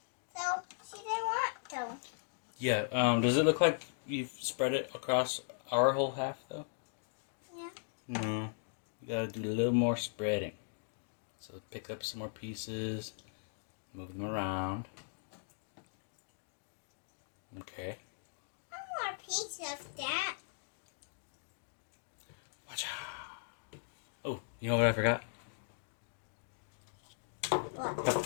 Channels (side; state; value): right; silent; digital silence